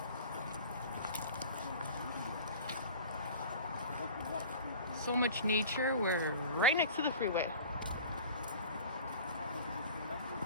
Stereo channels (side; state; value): both; inverted; correlation -0.41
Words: So much nature, we're right next to the freeway.